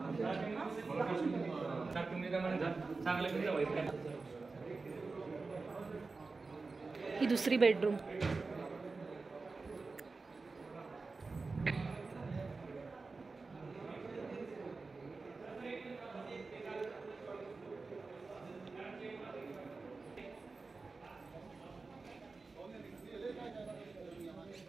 ही दुसरी बेडरूम.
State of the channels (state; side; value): quieter; left; 4.0 dB